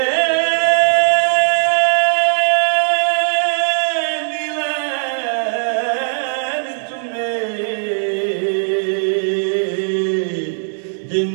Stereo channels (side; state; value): left; silent; digital silence